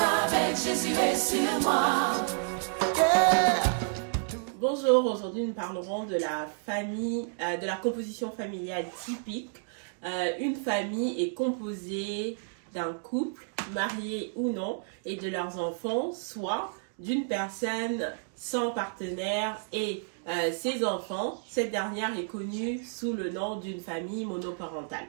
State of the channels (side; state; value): left; silent; digital silence